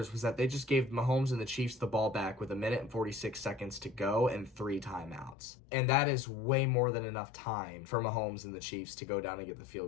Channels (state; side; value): drops out; right; at 5.4 s